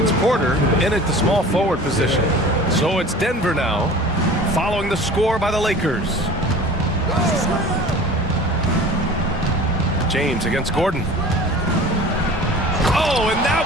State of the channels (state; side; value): normal; both; correlation 0.41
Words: Porter in at the small forward position. So it's Denver now, following the score by the Lakers. James against Gordon. Oh, and that